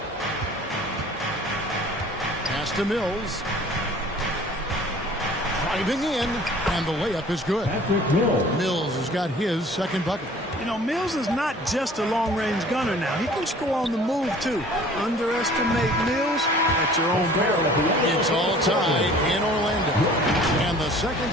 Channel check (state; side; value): normal; both; correlation 0.49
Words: Pass to Mills. Driving in, and the layup is good. Mills has got his second bucket. You know, Mills is not just a long-range gunner now. He can score on the move, too. Underestimate Mills at your own peril. It's all tied in Orlando. And the second